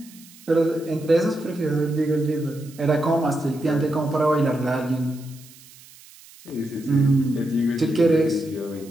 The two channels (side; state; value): right; noise; hiss, 22 dB below the sound